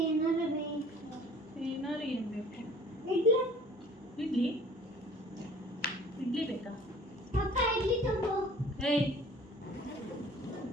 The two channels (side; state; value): both; normal; correlation 0.48